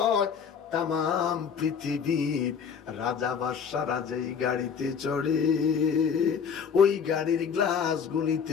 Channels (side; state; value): right; quieter; 6.8 dB